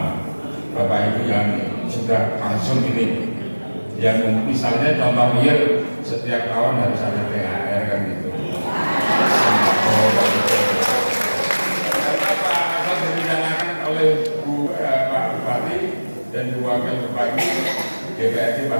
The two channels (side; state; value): both; inverted; correlation -1.00